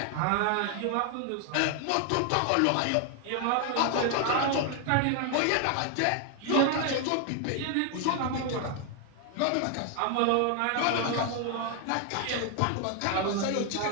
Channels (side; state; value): both; different; correlation 0.00